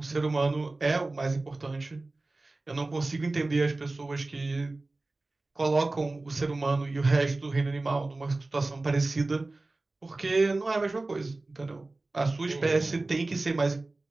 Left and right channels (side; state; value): left; quieter; 3.1 dB